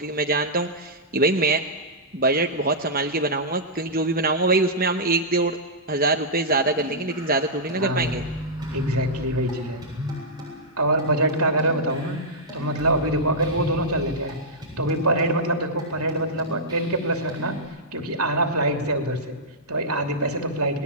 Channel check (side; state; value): both; normal; correlation -0.11